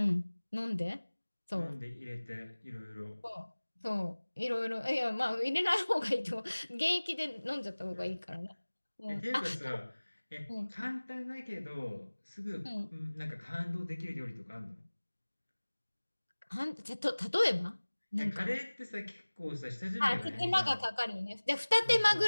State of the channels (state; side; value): inverted; both; correlation -1.00